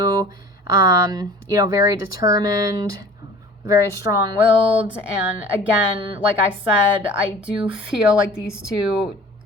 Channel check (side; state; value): both; normal; correlation 0.44